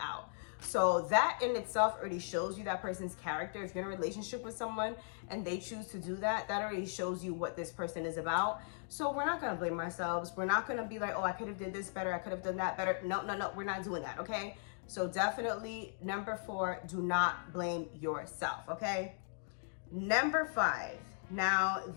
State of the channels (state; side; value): silent; right; digital silence